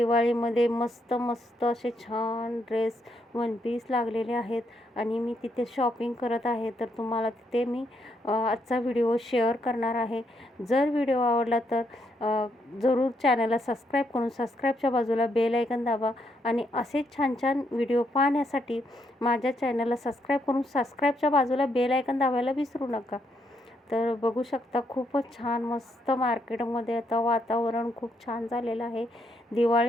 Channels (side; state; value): both; normal; correlation 0.76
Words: मस्त मस्त असे छान ड्रेस वन पीस लागलेले आहेत आणि मी तिथे शॉपिंग करत आहे. तर तुम्हाला तिथे मी आजचा व्हिडिओ शेअर करणार आहे. जर व्हिडिओ आवडला तर जरूर चॅनलला सबस्क्राईब करून सबस्क्राईबच्या बाजूला बेल आयकन दाबा आणि असेच छान छान व्हिडिओ पाहण्यासाठी माझ्या चॅनलला सबस्क्राईब करून सबस्क्राईबच्या बाजूला बेल आयकन दाबायला विसरू नका. तर बघू शकता खूपच छान मस्त मार्केटमध्ये आता वातावरण खूप छान झालेलं आहे.